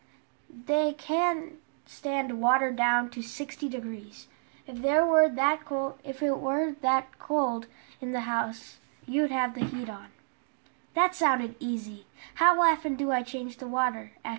"They can stand water down to 60 degrees. If it were that cold in the house, you'd have the heat on." That sounded easy. "How often do I change the water?"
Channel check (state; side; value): silent; left; digital silence